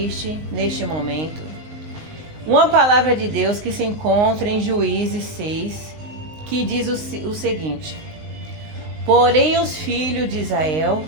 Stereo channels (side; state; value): left; late; 19 ms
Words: neste momento, uma palavra de Deus que se encontra em Juízes 6, que diz o seguinte: porém os filhos de Israel